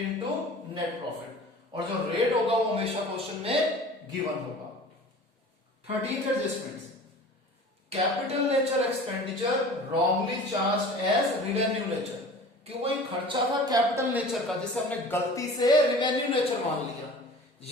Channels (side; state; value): both; normal; correlation 0.41